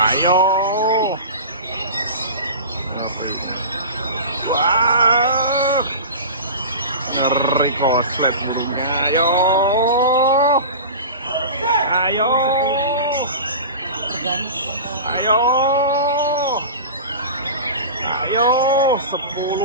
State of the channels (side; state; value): both; inverted; correlation -0.32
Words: Wah. Ngeri koslet burungnya. Ayo. Ayo. Ayo. Ayo